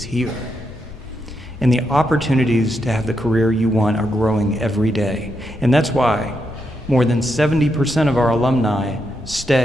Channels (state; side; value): normal; both; correlation 0.82